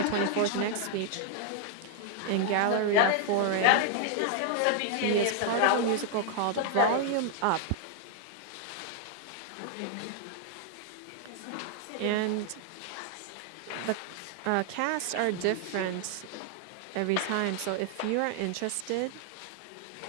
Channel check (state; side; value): different; both; correlation 0.00